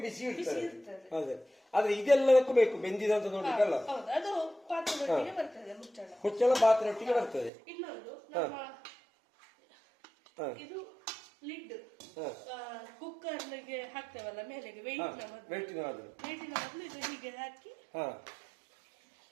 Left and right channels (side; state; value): left; drops out; at 7.5 s